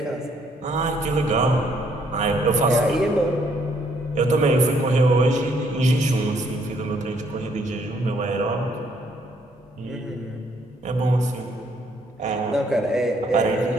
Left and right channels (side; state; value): both; normal; correlation 0.68